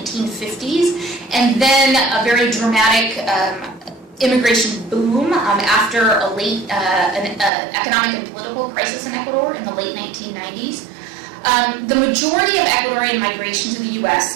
and then a very dramatic immigration boom after an economic and political crisis in Ecuador in the late 1990s. The majority of Ecuadorian migration to the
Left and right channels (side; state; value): left; drops out; at 7.5 s